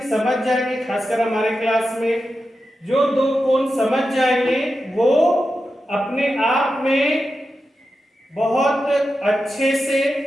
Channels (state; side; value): normal; both; correlation 0.90